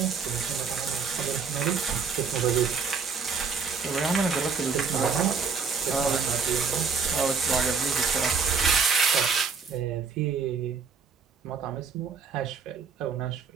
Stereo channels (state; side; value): quieter; left; 5.4 dB